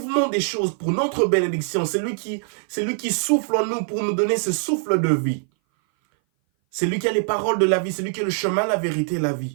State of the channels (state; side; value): silent; left; 58 dB below the other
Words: des choses pour notre bénédiction, c'est lui qui souffle en nous pour nous donner ce souffle de vie. C'est lui qui a les paroles de la vie, c'est lui qui a le chemin, la vérité et la